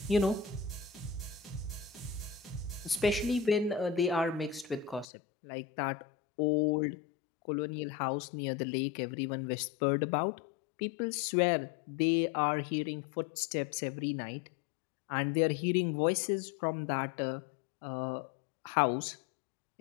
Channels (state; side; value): drops out; right; at 5.1 s